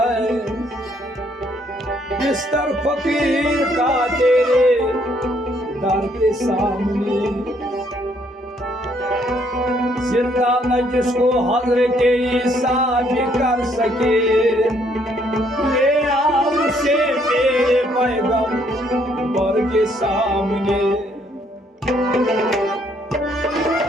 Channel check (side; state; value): both; normal; correlation 0.68